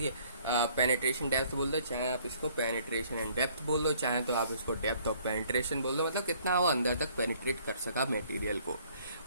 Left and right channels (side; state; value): both; inverted; correlation -0.60